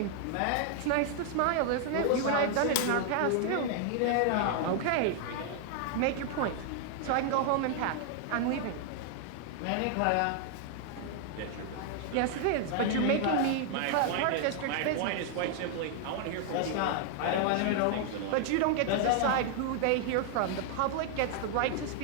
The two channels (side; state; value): both; different; correlation 0.00